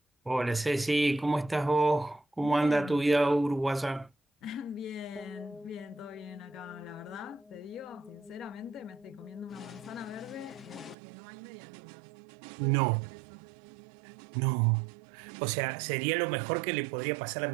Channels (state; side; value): drops out; left; at 11.0 s